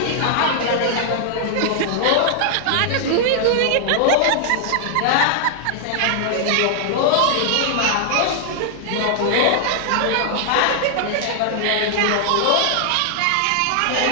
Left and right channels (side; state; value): both; different; correlation -0.01